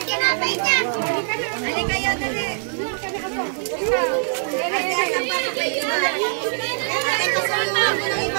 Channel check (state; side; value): silent; left; digital silence